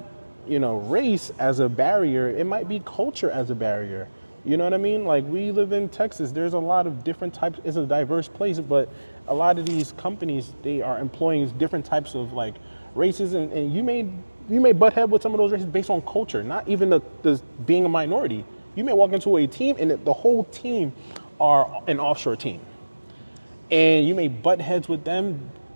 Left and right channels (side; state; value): both; inverted; correlation -1.00